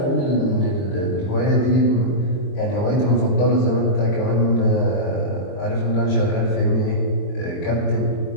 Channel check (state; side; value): late; right; 23 ms